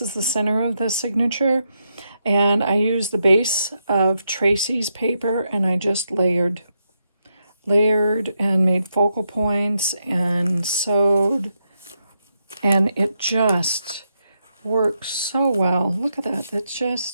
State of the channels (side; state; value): both; inverted; correlation -0.82